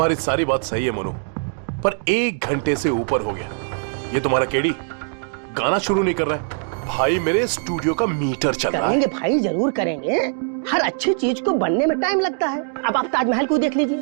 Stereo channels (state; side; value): silent; left; 61 dB below the other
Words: सारी बात सही है मोनू, पर 1 घंटे से ऊपर हो गया, ये तुम्हारा केडी गाना शुरू नहीं कर रहा है। भाई मेरे स्टूडियो का मीटर चल रहा है। करेंगे भाई, जरूर करेंगे। हर अच्छी चीज को बनने में टाइम लगता है। अब आप ताजमहल को देख लीजिए,